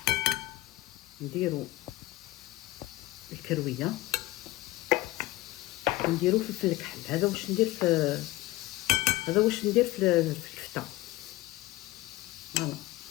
نديرو الكرويه ونديرو فلفل الكحل. هذا واش ندير في الكفته. فوالا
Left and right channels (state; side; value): quieter; right; 18.2 dB